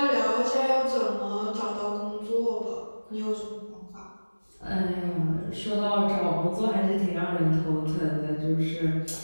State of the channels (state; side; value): inverted; both; correlation -1.00